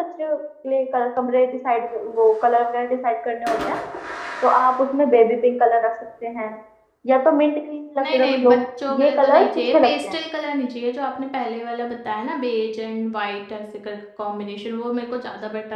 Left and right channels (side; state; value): both; identical; correlation 1.00